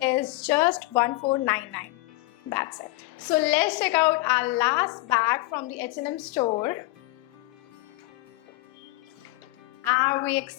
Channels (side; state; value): right; quieter; 21.1 dB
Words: is just 1499. That's it. So let's check out our last bag from the H&M store. Are we